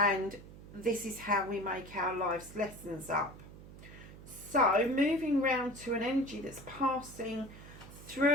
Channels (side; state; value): right; noise; hum, 16 dB below the sound